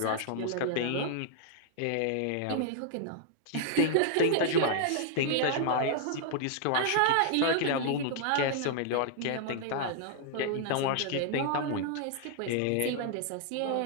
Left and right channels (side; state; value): both; different; correlation -0.01